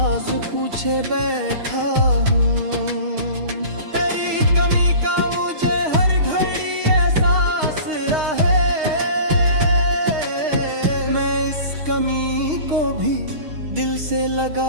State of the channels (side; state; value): left; late; 6.4 ms